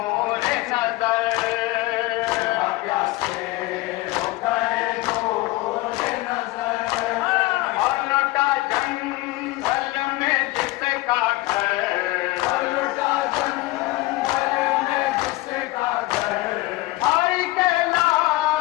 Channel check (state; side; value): quieter; right; 20.1 dB